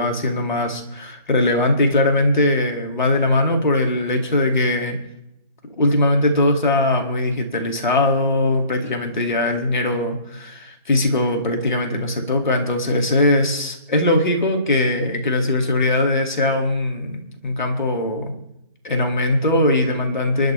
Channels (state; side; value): inverted; both; correlation -0.50